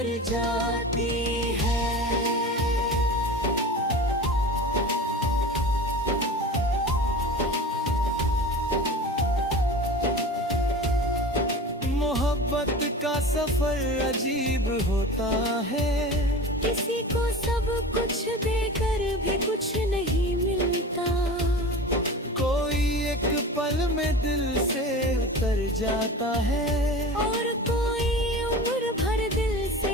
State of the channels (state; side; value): normal; both; correlation 0.34